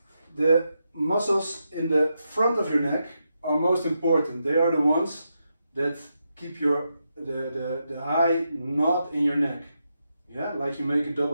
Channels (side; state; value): both; inverted; correlation -0.84